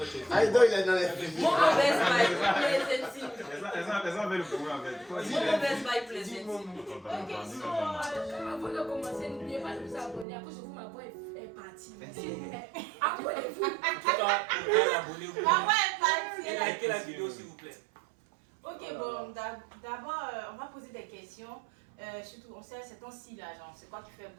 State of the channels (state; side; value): drops out; left; at 10.2 s